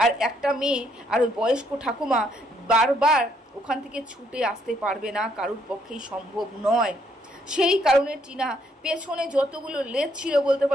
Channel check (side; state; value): both; normal; correlation 0.70